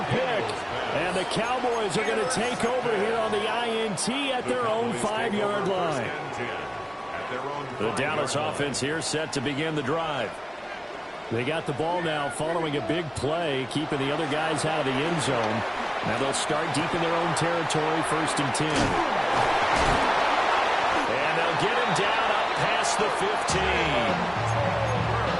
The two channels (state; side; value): identical; both; correlation 1.00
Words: pick. And the Cowboys are going to take over here on the INT at their own 5-yard line. The Dallas offense here set to begin the drive. They got the ball now following a big play, keeping the other guys out of the end zone. Now they'll start deep in their own territory, 1st and 10. And they'll get him down up past the 15.